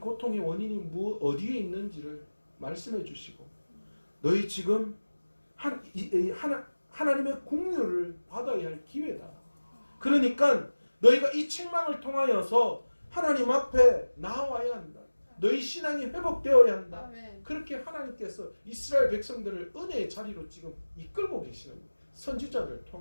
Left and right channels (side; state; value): both; inverted; correlation -1.00